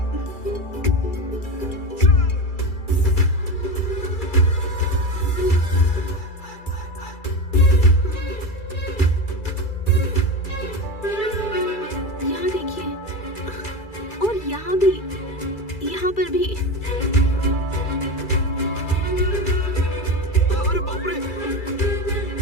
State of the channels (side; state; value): right; late; 2.3 ms